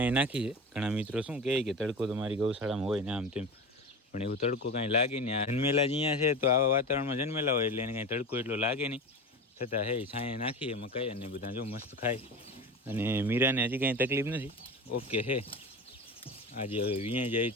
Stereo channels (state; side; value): normal; both; correlation 0.28